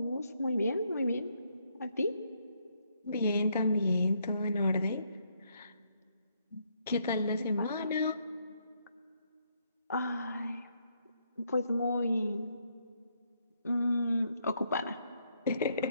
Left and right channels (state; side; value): inverted; both; correlation -0.74